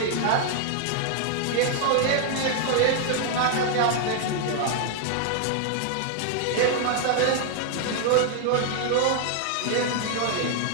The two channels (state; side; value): different; both; correlation 0.00